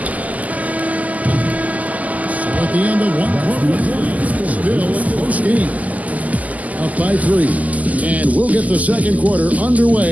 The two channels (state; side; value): late; left; 0.076 ms